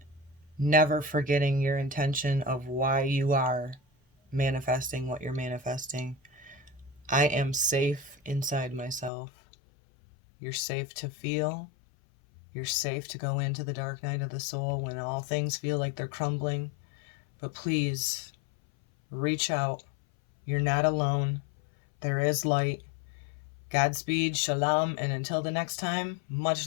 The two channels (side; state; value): right; drops out; at 9.1 s